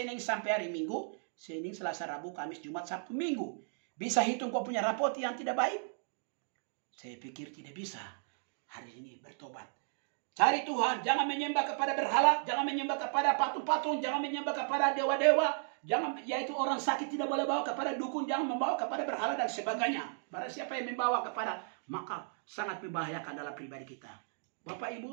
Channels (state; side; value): silent; left; digital silence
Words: sampai hari Minggu. Senin, Selasa, Rabu, Kamis, Jumat, Sabtu, Minggu. Bisa hitung kau punya rapot yang tidak baik? Saya pikir tidak bisa. Hari ini bertobat. Cari Tuhan. Jangan menyembah kepada berhala. Jangan menyembah kepada patung-patung. Jangan menyembah kepada dewa-dewa. Jangan, yaitu orang sakit tidak boleh bawa kepada dukun. Jangan membawa kepada berhala dan sebagainya. Barang siapa yang membawa kepada, maka sangat membahayakan dalam pribadi kita. Bapak,